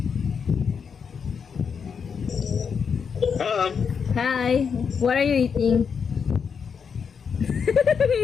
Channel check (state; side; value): quieter; right; 6.4 dB